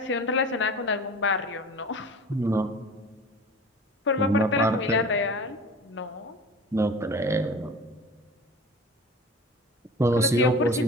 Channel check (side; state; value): both; normal; correlation 0.38